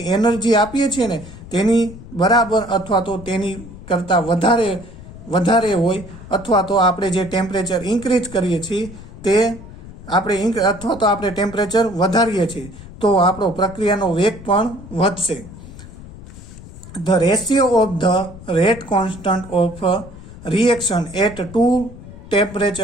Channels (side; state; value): left; noise; rumble, 16 dB below the sound